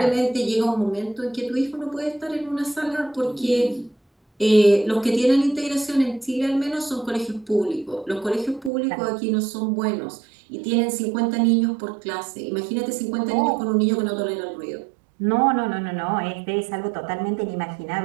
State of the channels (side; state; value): left; drops out; at 8.7 s